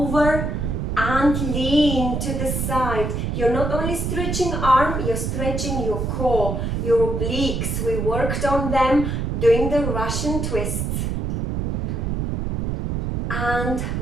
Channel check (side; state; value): right; noise; rumble, 1 dB below the sound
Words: and lean to the side. You're not only stretching arm, you're stretching your core, your obliques. We worked on them doing the Russian twists. And